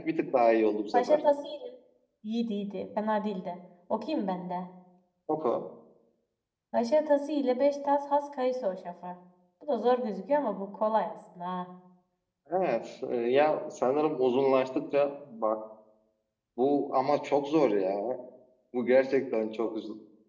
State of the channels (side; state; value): both; identical; correlation 1.00